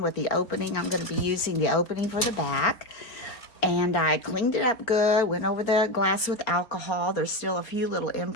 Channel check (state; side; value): late; right; 4.4 ms